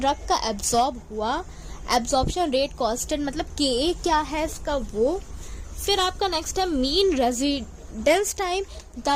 का एब्जॉर्ब हुआ। एब्जॉर्प्शन रेट कांस्टेंट मतलब KA क्या है इसका, वो। फिर आपका नेक्स्ट है मीन रेजिडेंस टाइम,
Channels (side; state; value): both; identical; correlation 1.00